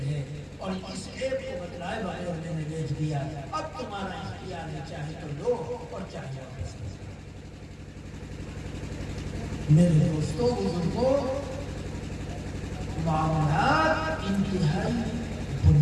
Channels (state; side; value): identical; both; correlation 1.00